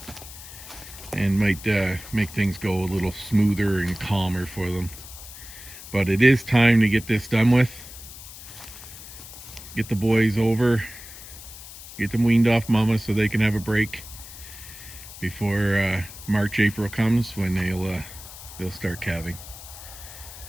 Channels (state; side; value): noise; left; hiss, 15 dB below the sound